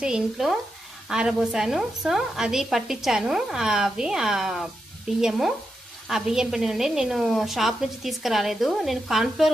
ఇంట్లో ఆరబోసాను. సో అది పట్టించాను, అవి ఆ బియ్యం పిండి నుండి నేను షాప్ నుంచి తీసుకురాలేదు. నేను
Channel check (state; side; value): normal; both; correlation 0.86